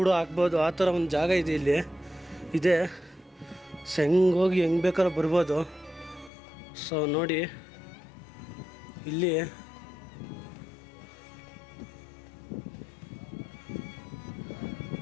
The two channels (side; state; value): right; drops out; at 6.3 s